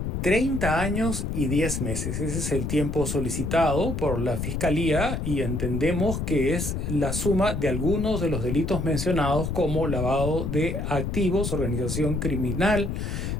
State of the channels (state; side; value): noise; left; rumble, 2 dB below the sound